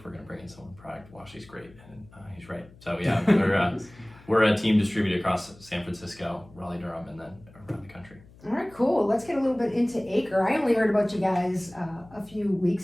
we're going to bring in someone product, Washi's great. And he's right. So yeah, we're a team distributed across San Francisco, Raleigh-Durham, and then around the country. All right, cool. Let's get a little bit into Acre. I only heard about you guys a few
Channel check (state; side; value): noise; left; hum, 24 dB below the sound